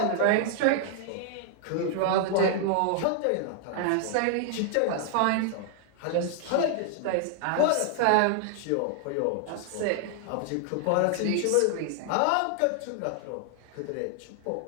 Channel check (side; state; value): both; different; correlation 0.00